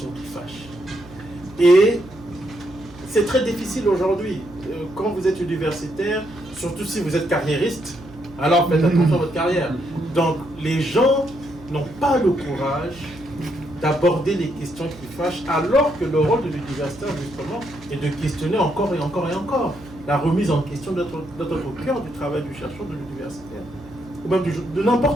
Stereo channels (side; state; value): both; normal; correlation 0.76